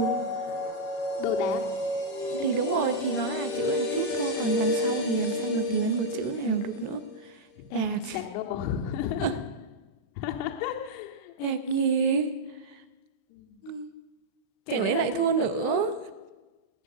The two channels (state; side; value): late; right; 36 ms